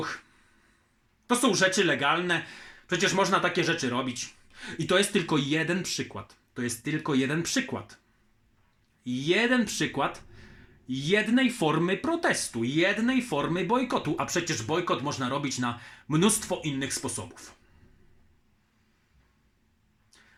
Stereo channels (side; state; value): both; identical; correlation 1.00